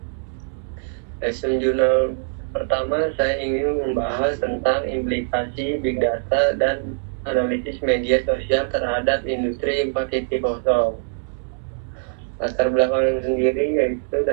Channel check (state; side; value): silent; left; 64 dB below the other